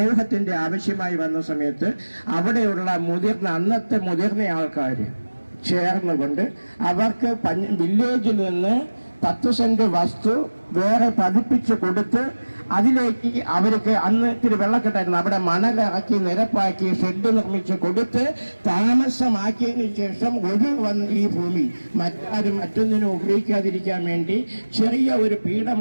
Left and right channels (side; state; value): both; inverted; correlation -1.00